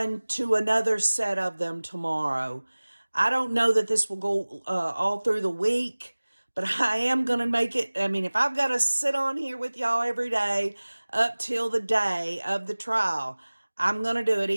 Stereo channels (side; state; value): both; inverted; correlation -1.00